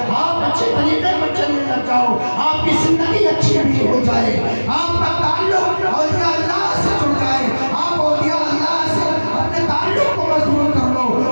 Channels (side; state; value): both; inverted; correlation -1.00